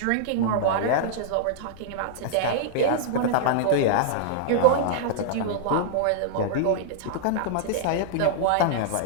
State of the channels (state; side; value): different; both; correlation -0.01